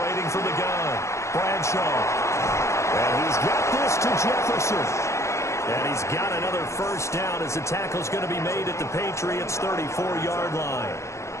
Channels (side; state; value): right; late; 0.14 ms